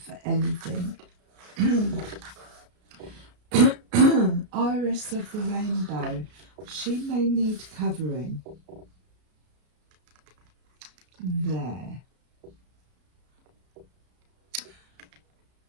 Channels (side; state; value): left; late; 33 ms